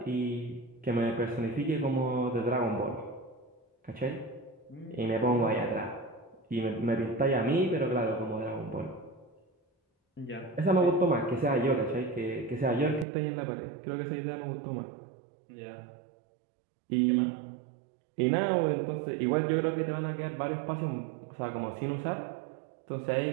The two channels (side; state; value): left; drops out; at 13.1 s